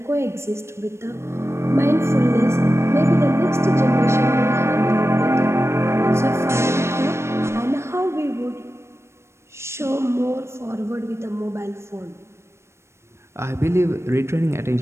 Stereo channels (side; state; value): left; late; 0.13 ms